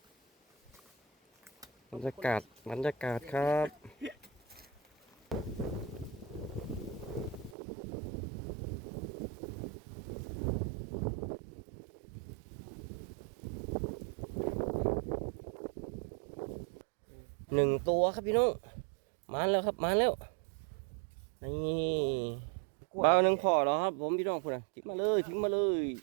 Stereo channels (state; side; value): drops out; left; at 7.6 s